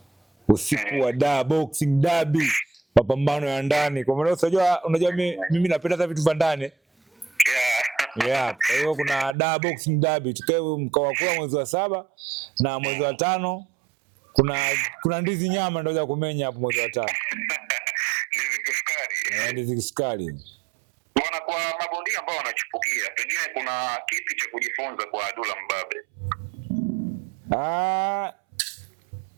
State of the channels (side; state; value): left; drops out; at 9.3 s